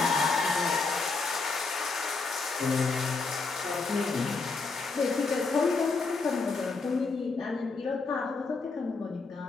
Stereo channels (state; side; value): quieter; right; 4.2 dB